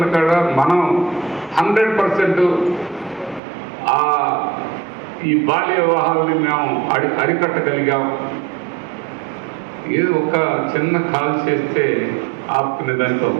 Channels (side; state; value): left; drops out; at 3.4 s